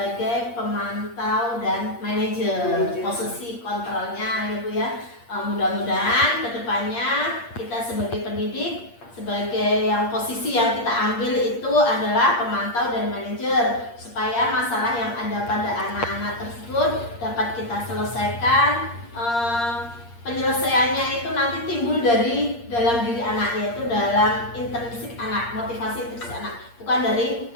pemantau dan manajer, posisi kontrolnya ya Bu ya. Mudah-mudahan kedepannya kita sebagai pendidik, sebagai yang posisi yang kita ambil itu adalah pemantau dan manajer, supaya masalah yang ada pada anak-anak tersebut dapat kita selesaikan. Penyelesaiannya itu nanti timbul dari dalam diri anak, yaitu dalam intrinsik anak, motivasi intrinsik anak, bukan dari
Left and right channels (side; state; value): right; late; 8.6 ms